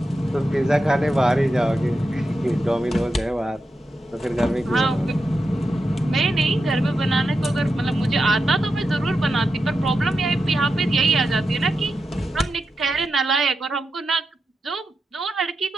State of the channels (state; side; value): normal; both; correlation 0.88